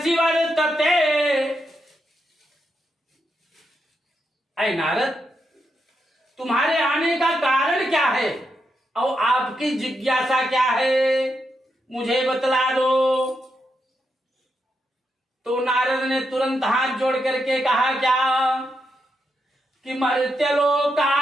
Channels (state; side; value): normal; both; correlation 0.83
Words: वर्तते। ऐ नारद, तुम्हारे आने का कारण क्या है और आपकी जिज्ञासा क्या है, मुझे बतला दो। तो नारद ने तुरंत हाथ जोड़ करके कहा क्या कि